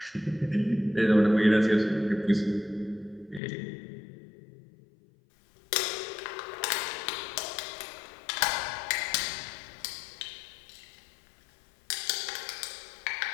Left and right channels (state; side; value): drops out; right; at 3.4 s